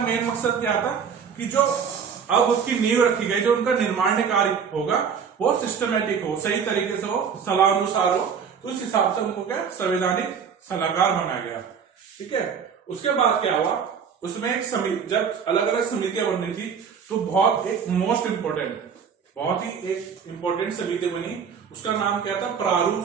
मकसद क्या था कि जो अब उसकी नींव रखी गई, जो उनका निर्माण कार्य होगा वो सिस्टमेटिक हो, सही तरीके से हो, सलाह अनुसार हो। तो उस हिसाब से उनको क्या संवैधानिक सलाहकार बनाया गया। ठीक है, उसके बाद क्या हुआ, उसमें एक समिति, जब अलग अलग समितियां बननी थी तो बहुत एक मोस्ट इंपोर्टेंट, बहुत ही एक इंपोर्टेंट समिति बनी। उसका नाम क्या था, प्रारूप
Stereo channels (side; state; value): left; quieter; 6.8 dB